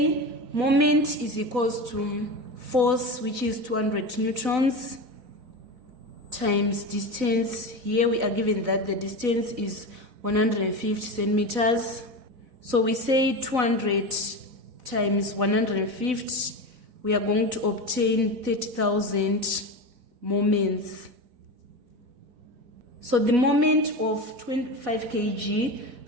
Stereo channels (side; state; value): left; late; 4.0 ms